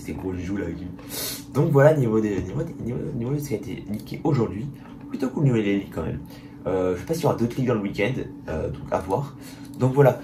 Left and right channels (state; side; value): identical; both; correlation 1.00